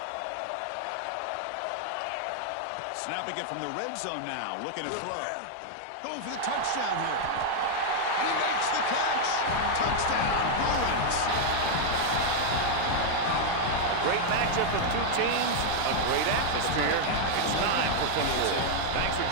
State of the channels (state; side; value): different; both; correlation 0.00